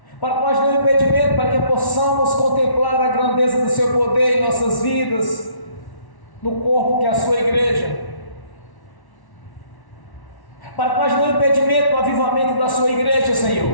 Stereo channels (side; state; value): right; late; 1.1 ms